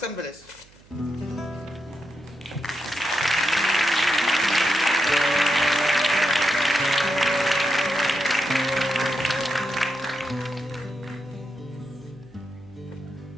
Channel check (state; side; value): noise; right; hum, 27 dB below the sound